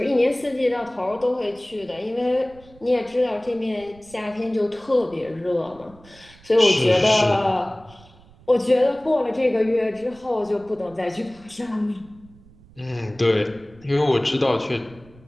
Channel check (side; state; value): right; noise; rumble, 25 dB below the sound